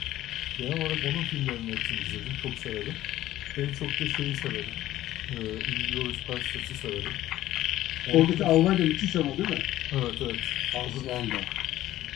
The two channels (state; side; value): quieter; right; 14.5 dB